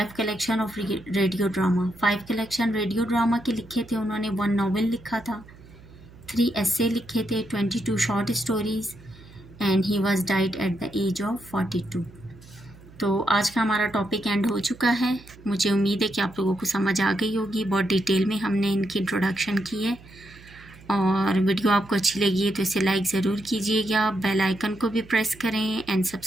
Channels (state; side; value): noise; right; hum, 22 dB below the sound